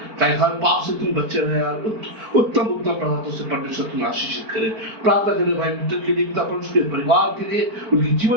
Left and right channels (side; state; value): left; late; 4.4 ms